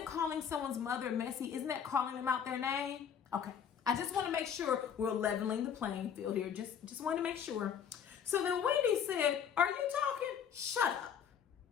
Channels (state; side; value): quieter; right; 8.0 dB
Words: someone's mother messy? Isn't that calling them out their name? Okay. I just want to make sure we're leveling the playing field here. Just want to make sure. So then Wendy said, "Are you talking? Shut up."